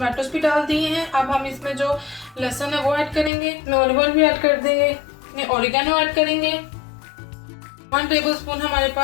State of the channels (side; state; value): right; drops out; at 3.3 s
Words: भी डाल दिए हैं। अब हम इसमें जो लहसुन है वो ऐड करेंगे, ऑलिव ऑयल भी ऐड कर देंगे, ऑरिगेनो ऐड करेंगे, 1 टेबलस्पून हमारे